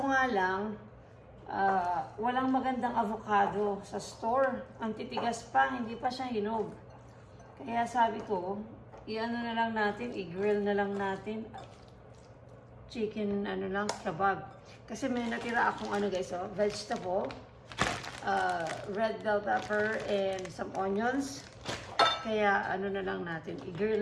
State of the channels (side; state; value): both; identical; correlation 1.00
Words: nga lang, walang magandang avocado sa store. Ang titigas pa, hindi pa siya hinog. Kaya sabi ko, i-ano na lang natin, i-grill na lang natin. Chicken, kebab. Kasi may natira akong vegetable, red bell pepper, and some onions. Kaya, na lang natin, i-grill